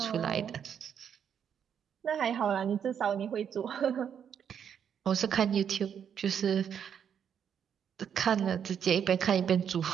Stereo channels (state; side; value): quieter; left; 8.2 dB